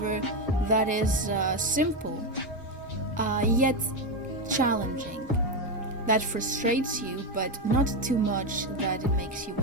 that is simple, yet challenging, that frustrates you but not too much that it makes you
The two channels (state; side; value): normal; both; correlation 0.09